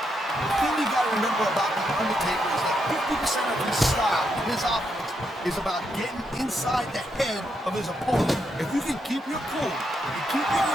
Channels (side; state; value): both; normal; correlation 0.80